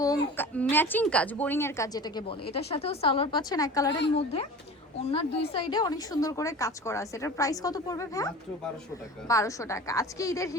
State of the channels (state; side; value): normal; both; correlation 0.37